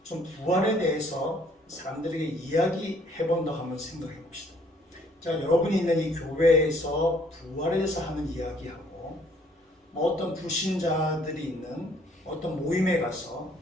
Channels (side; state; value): both; normal; correlation 0.62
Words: 좀 부활에 대해서 사람들에게 이야기해 본다고 한번 생각해 봅시다. 자, 여러분이 있는 이 교회에서 부활에 대해서 하는 이야기하고 어떤 불신자들이 있는 어떤 모임에 가서